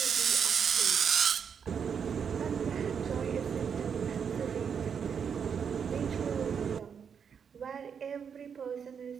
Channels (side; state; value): left; quieter; 7.0 dB